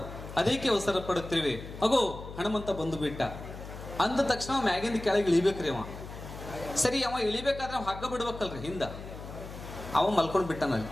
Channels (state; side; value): noise; left; hum, 12 dB below the sound